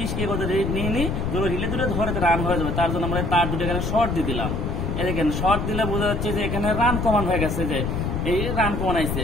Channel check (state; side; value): noise; left; rumble, 2 dB below the sound